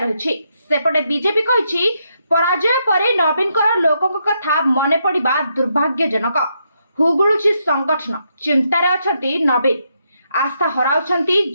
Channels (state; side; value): inverted; both; correlation -0.79